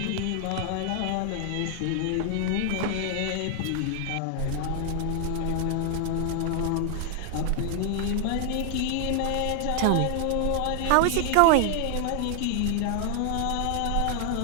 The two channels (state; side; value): different; both; correlation 0.00